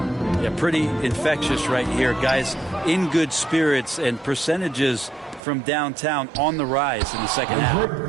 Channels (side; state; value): left; drops out; at 5.4 s